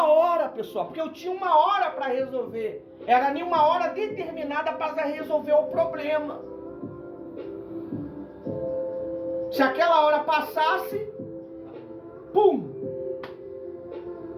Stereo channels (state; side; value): identical; both; correlation 1.00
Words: hora, pessoal, porque eu tinha uma hora para resolver. Era nenhuma hora determinada para resolver o problema. Se aquela hora passasse, pum!